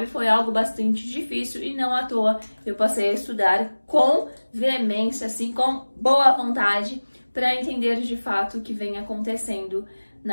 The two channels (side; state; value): both; inverted; correlation -1.00